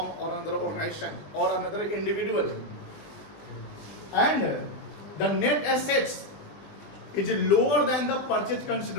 और अनदर ऑर्गेनाइजेशन और another individual and the net assets is lower than the purchase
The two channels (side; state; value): right; late; 20 ms